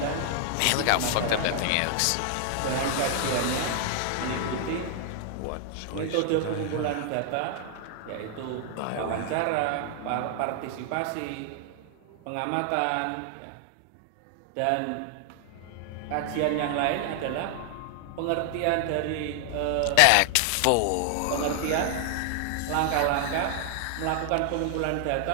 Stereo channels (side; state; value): both; different; correlation 0.00